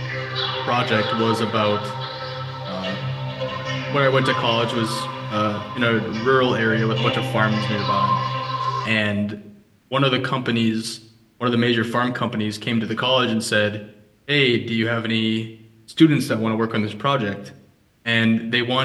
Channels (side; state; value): both; identical; correlation 1.00